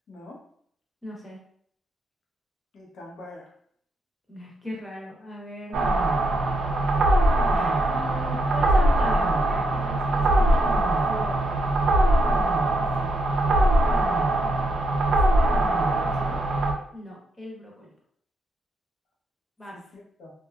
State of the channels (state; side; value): normal; both; correlation 0.79